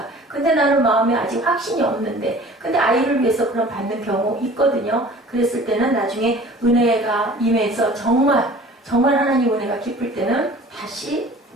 근데 나는 마음에 아직 확신이 없는데 근데 아이를 위해서 그런 받는 경우 있거든요. 그랬을 때는 나중에 은혜가 임해서 정말 하나님 은혜가 깊을 때는 다시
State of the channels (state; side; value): normal; both; correlation 0.46